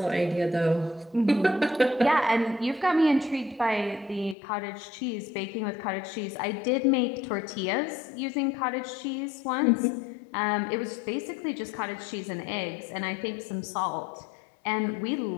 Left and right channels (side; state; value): right; drops out; at 4.4 s